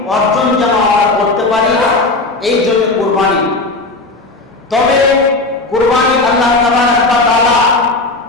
অর্জন যেন আমরা করতে পারি, এই জন্য কুরবানি। তবে কুরবানি আল্লাহ তাআলা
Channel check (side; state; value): right; quieter; 3.2 dB